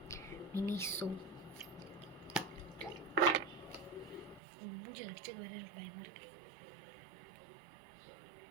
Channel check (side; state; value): left; drops out; at 4.4 s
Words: மினிஸோ. மூஞ்சி அடிச்சு வேற எனக்கு பயமாக இருக்கு.